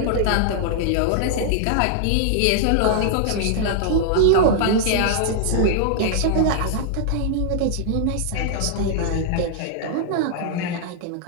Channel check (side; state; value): both; different; correlation -0.01